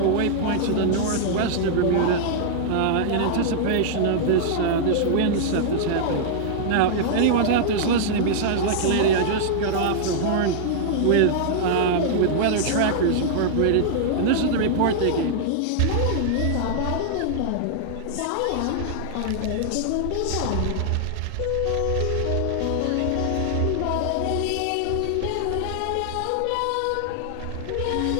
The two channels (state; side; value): different; both; correlation -0.01